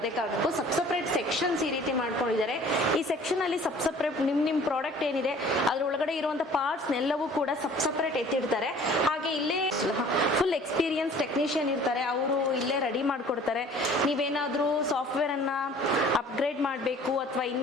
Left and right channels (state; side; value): normal; both; correlation 0.50